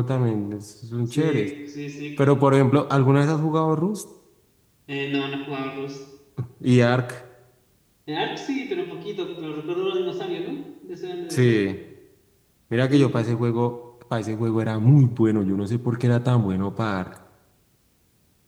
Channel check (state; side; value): identical; both; correlation 1.00